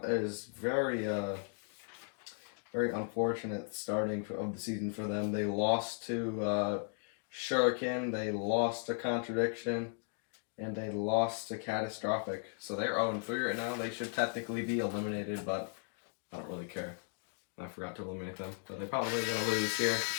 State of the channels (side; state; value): right; silent; 54 dB below the other